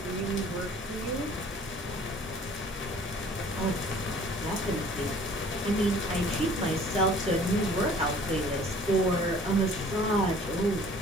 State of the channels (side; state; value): both; normal; correlation 0.52